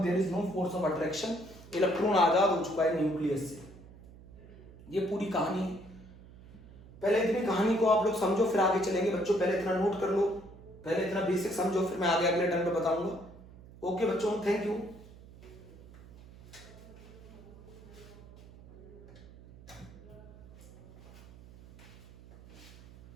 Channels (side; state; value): right; noise; hum, 20 dB below the sound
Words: there is no force of attraction, electron आजाद हो चुका है न्यूक्लियस से। ये पूरी कहानी है। पहले इतनी कहानी को आप लोग समझो फिर आगे चलेंगे बच्चों। पहले इतना नोट कर लो, पहले इतना बेसिक समझो, फिर मैं आगे अगले टर्म पे बताऊंगा। ओके बच्चों, थैंक यू।